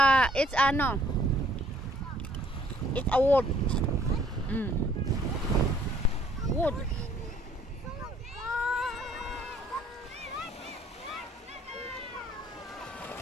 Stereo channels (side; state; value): both; normal; correlation 0.61